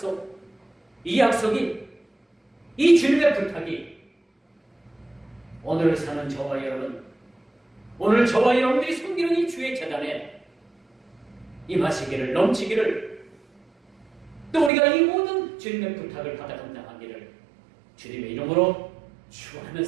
이 약속이, 이 주님의 부탁이 오늘 사는 저와 여러분, 오늘 저와 여러분들이 섬기는 이 주의 재단에 임하시기를, 넘치기를, 또 우리가 이 모든 주님의 부탁을 받아 감당하기를 주님의 이름으로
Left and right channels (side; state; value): left; drops out; at 14.7 s